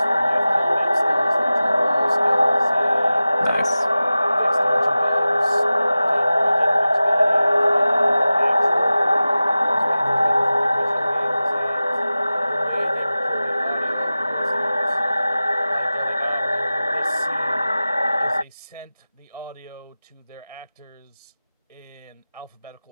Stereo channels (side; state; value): both; inverted; correlation -0.96